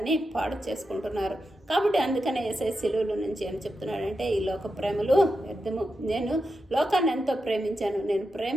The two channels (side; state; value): both; normal; correlation 0.88